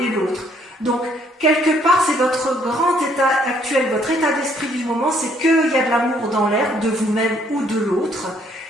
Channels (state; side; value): normal; both; correlation 0.66